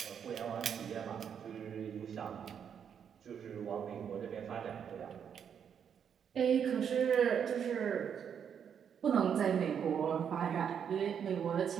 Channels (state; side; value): quieter; left; 7.9 dB